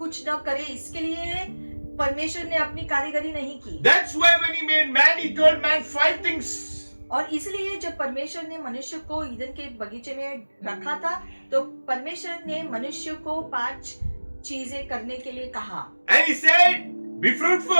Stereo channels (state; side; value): inverted; both; correlation -1.00